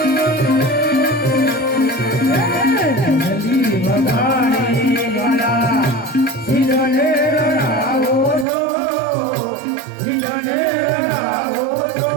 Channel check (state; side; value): drops out; left; at 8.5 s